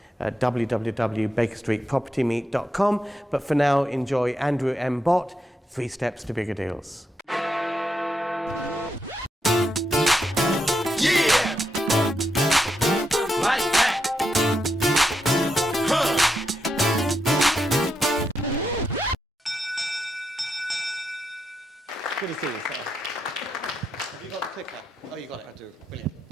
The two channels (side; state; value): both; normal; correlation 0.83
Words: www.bakerstreetpropertymeet.com. But for now, enjoy Andrew M Bott, 3 Steps to Bigger Deals. Good to see you, sir. Have you got the clicker? Oh, you got it. I do. Brilliant.